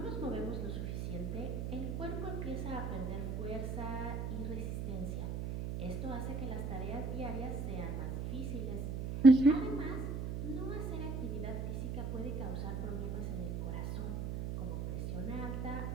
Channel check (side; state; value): right; noise; hum, 3 dB below the sound